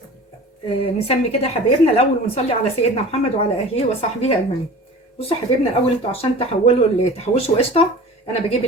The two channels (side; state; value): both; normal; correlation 0.39